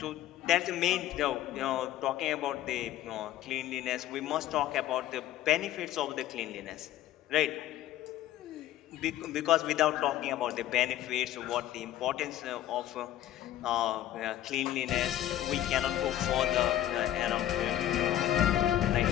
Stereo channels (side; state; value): right; quieter; 12.8 dB